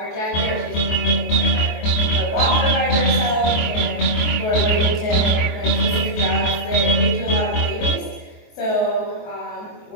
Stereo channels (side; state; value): right; late; 23 ms